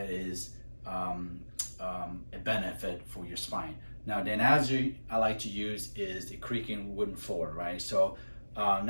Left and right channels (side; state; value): both; inverted; correlation -1.00